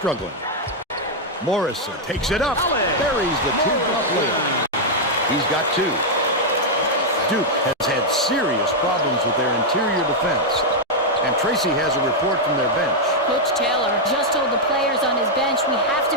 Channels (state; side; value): normal; both; correlation -0.02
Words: Morrison takes it up. Buries the two-drop layup. He's got 2. Duke has had serious problems with their interior defense. And Tracy has a report from their bench. Coach Taylor just told the players on his bench, we have to